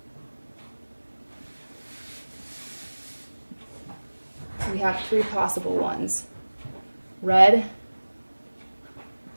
We have 3 possible ones: red,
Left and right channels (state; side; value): inverted; both; correlation -1.00